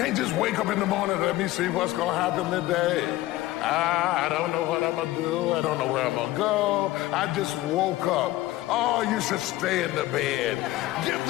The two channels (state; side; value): quieter; right; 16.8 dB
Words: just wake up in the morning and let me see what's gonna happen today. I don't know what I'm gonna do. I don't know where I'm gonna go. I just woke up. Oh, you should stay in the bed. Give